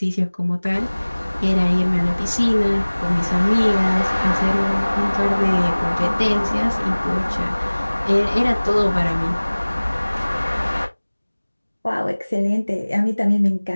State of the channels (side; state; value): both; inverted; correlation -1.00